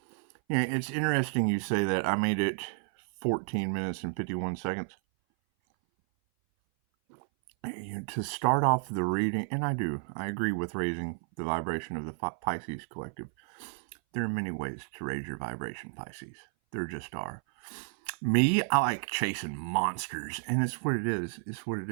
Yeah, it's interesting you say that. I made it 14 minutes and 51 seconds. To start off the reading, and I agree with raising the vibration of the Pisces collective. There are many ways to raise your vibration, Pisces. There just are. Me, I like chasing monsters, and it's what it is. It's what it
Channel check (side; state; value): left; silent; 57 dB below the other